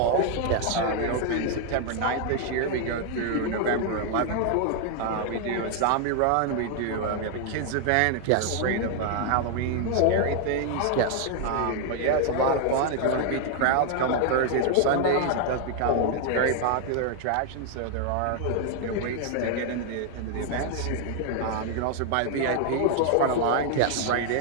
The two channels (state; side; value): different; both; correlation 0.00